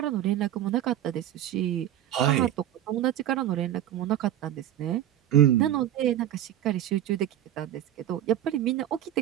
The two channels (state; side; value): quieter; left; 11.8 dB